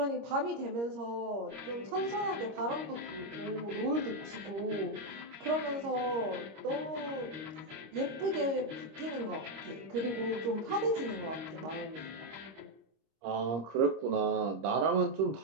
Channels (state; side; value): late; left; 26 ms